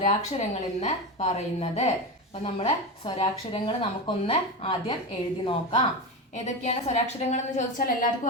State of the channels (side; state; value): both; normal; correlation 0.19